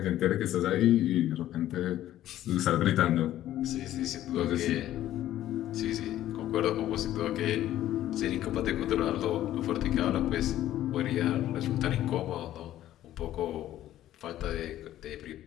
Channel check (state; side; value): quieter; right; 13.1 dB